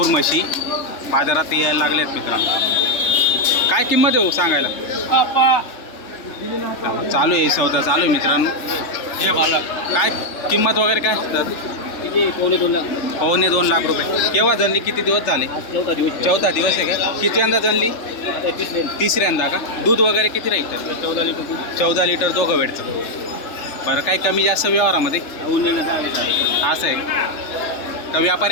म्हशी बाजारात यायला लागल्या आहेत मित्रांनो. काय किंमत आहे हो सांगायला? चालू आहे सौदा चालू आहे मित्रांनो. काय किंमत वगैरे काय? 2.25 लाख रुपये. केव्हा जनली? किती दिवस झाले? चौथा दिवस आहे का? किती जनली? तिसऱ्यांदा का? दूध वगैरे किती राहील? 14 लिटर दोघं वेळचं. बरं, काही कमी जास्त व्यवहारामध्ये असं आहे का?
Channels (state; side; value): late; right; 3.3 ms